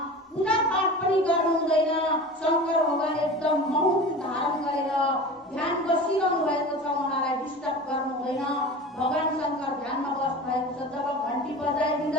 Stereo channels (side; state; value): both; normal; correlation 0.35